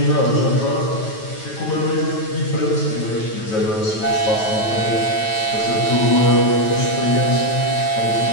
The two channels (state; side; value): late; right; 9.2 ms